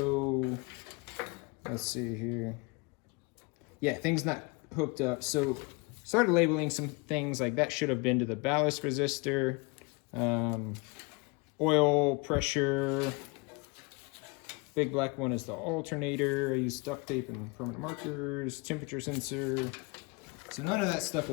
let's see here. Yeah, things not hooked up. So started labeling some things like that should have been to the ballast resistor, oil pressure. Big black one is the alternator. I used duct tape and permanent markers, temperature sensor. So none of that stuff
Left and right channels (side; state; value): right; quieter; 29.0 dB